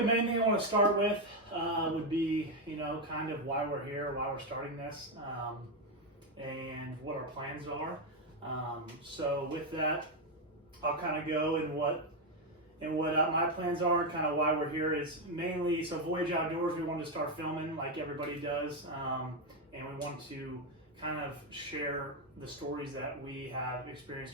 main thing I want to start with would be, kind of why we're here, why we're starting this, and what our plans are. So with that, I'll kind of go in what my plans are, and kind of why we're here is mainly, so Voyage Outdoors, we wanted to start filming like everybody does, and we want to kind of share the stories that we have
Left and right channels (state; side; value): normal; both; correlation 0.05